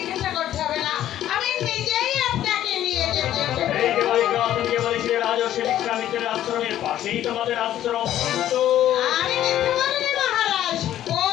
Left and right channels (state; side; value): quieter; right; 12.2 dB